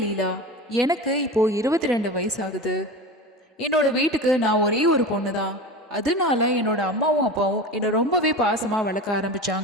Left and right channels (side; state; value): both; normal; correlation 0.29